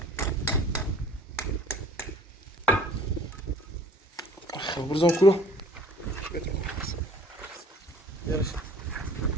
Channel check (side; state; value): both; normal; correlation 0.51